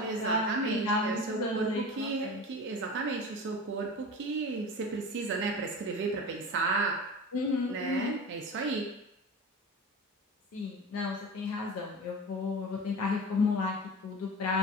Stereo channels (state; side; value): normal; both; correlation 0.32